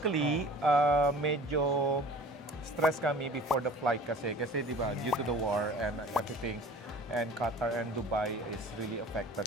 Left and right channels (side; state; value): both; normal; correlation 0.44